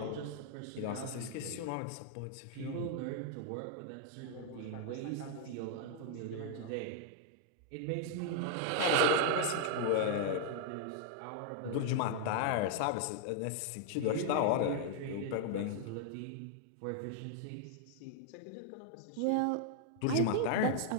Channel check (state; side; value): different; both; correlation -0.01